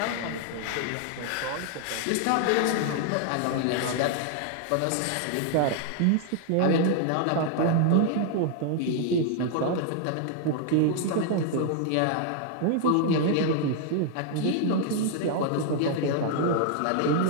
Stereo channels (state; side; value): different; both; correlation 0.00